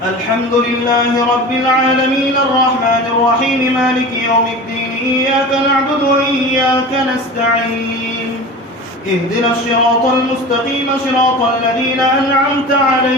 الحمد لله رب العالمين الرحمن الرحيم مالك يوم الدين إياك نعبد وإياك نستعين اهدنا الصراط المستقيم صراط الذين أنعمت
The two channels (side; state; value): both; normal; correlation 0.33